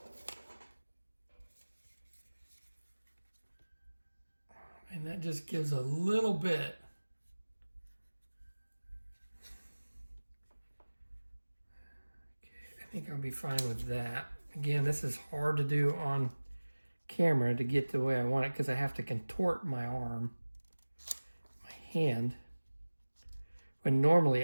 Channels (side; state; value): both; inverted; correlation -1.00